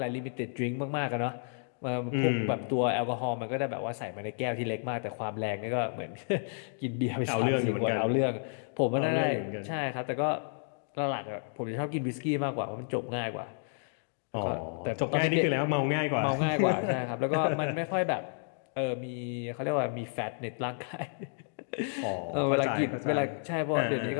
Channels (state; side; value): silent; right; digital silence